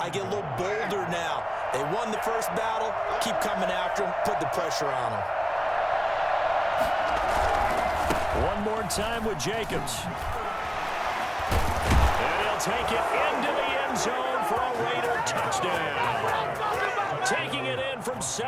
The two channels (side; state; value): both; identical; correlation 1.00